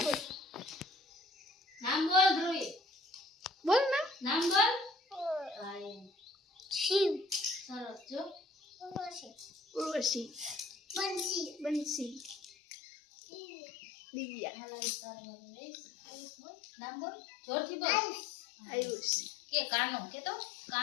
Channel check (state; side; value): drops out; right; at 12.5 s